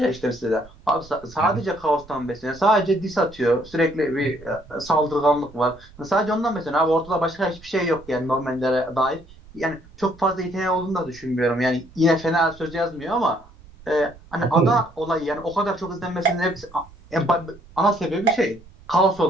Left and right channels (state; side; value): noise; right; rumble, 23 dB below the sound